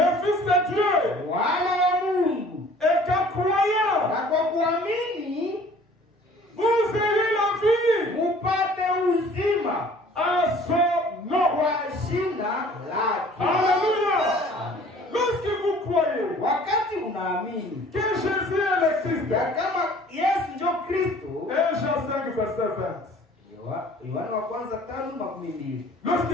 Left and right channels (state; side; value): normal; both; correlation 0.51